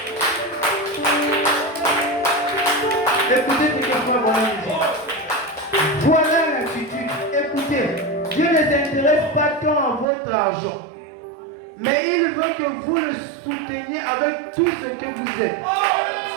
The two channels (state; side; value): drops out; left; at 10.1 s